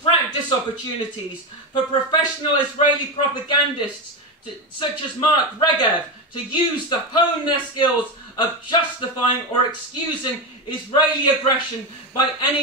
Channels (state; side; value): normal; both; correlation 0.13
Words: practice opportunities for professional Israeli propagandists such as Mark Regev to hone their skills of justifying or excusing Israeli aggression by